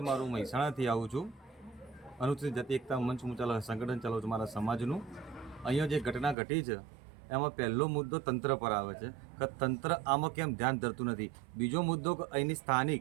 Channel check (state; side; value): drops out; left; at 6.4 s